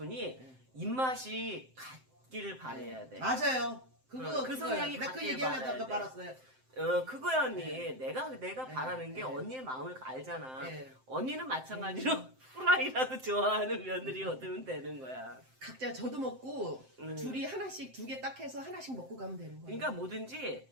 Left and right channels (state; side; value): late; left; 7.7 ms